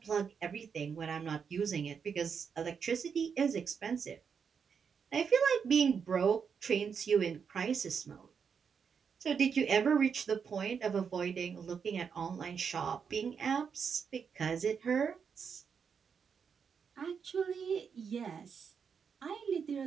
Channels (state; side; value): quieter; left; 6.5 dB